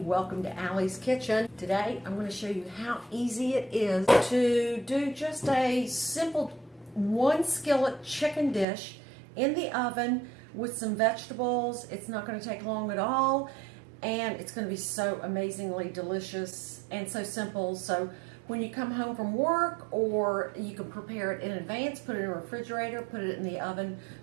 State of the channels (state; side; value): drops out; left; at 8.7 s